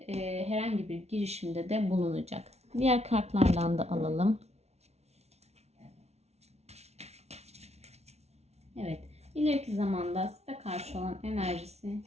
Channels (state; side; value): late; left; 0.31 ms